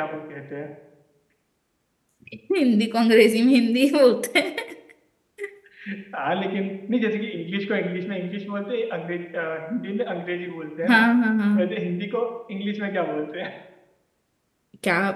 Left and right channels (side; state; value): both; identical; correlation 1.00